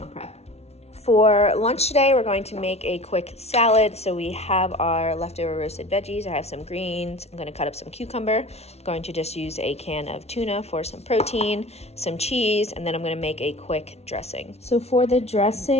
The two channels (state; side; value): late; right; 0.31 ms